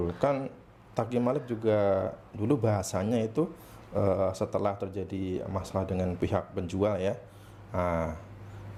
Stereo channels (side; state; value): both; identical; correlation 1.00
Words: kan Taqi Malik juga dulu bahasanya itu setelah terjadi masalah dengan pihak penjual ya. Nah,